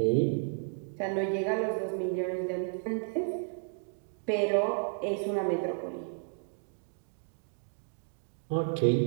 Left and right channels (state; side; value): silent; left; digital silence